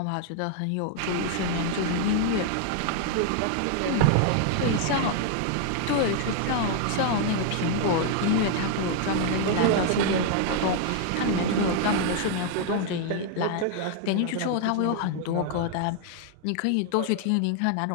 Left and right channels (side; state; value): both; different; correlation 0.00